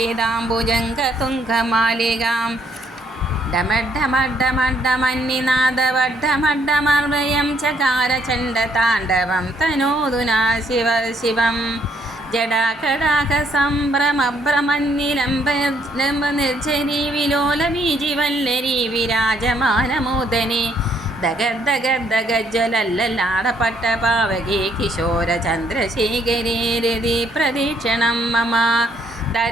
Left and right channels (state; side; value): normal; both; correlation 0.68